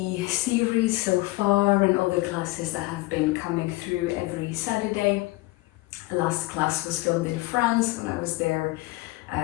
series so far and all the classes that have been coming through every Saturday. The last class was filmed in France when I was there.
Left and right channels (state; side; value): quieter; right; 21.1 dB